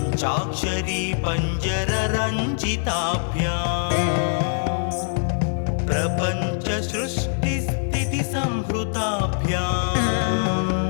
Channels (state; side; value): silent; right; digital silence